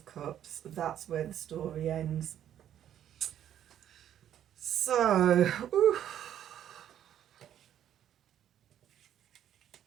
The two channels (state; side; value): quieter; left; 10.6 dB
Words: Cups. That's where the story ends. So,